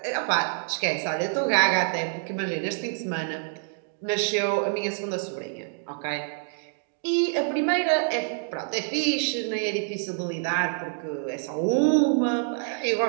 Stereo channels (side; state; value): left; silent; digital silence